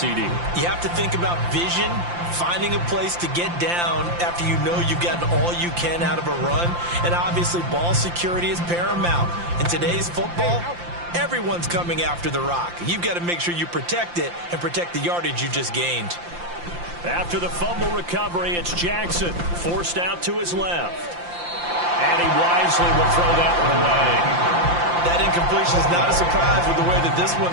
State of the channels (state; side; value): late; left; 5.8 ms